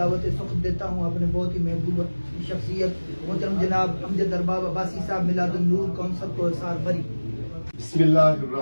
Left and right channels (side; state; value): both; inverted; correlation -1.00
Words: سخت دیتا ہوں اپنے بہت ہی محبوب شخصیت محترم جناب امجد ارباب عباسی صاحب میلاد النور کونسل کو احسار بری۔ بسم اللہ